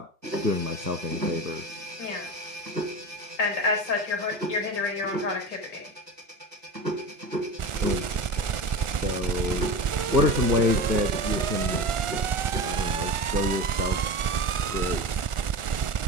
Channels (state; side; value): late; left; 1.4 ms